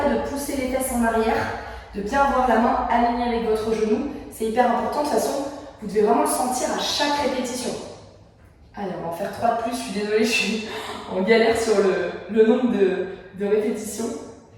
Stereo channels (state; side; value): identical; both; correlation 1.00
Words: de pousser les fesses en arrière, de bien avoir la main alignée avec votre genou. C'est hyper important. De toute façon, vous devez vraiment le sentir à chaque répétition. Allez, on va en faire 3 de plus. Je suis désolée, je suis en galère sur le nombre de répétitions.